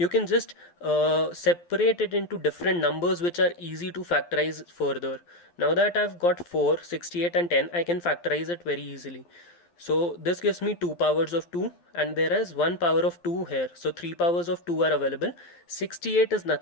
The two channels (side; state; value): right; late; 12 ms